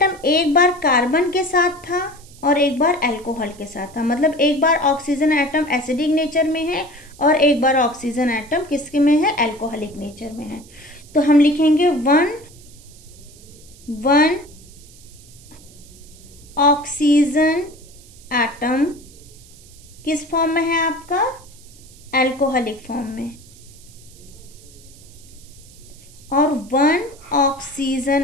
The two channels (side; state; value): right; noise; hiss, 23 dB below the sound